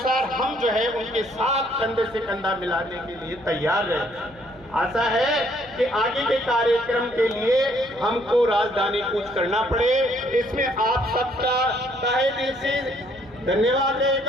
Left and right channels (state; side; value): noise; left; hum, 25 dB below the sound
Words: हम जो है उनके साथ कंधे से कंधा मिलाने के लिए तैयार रहे। आशा है कि आगे के कार्यक्रम के लिए हमको राजधानी कूच करना पड़े, इसमें आप सबका तहे दिल से धन्यवाद